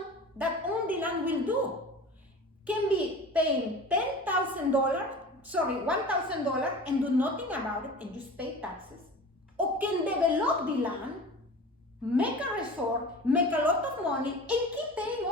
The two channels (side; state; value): both; normal; correlation 0.37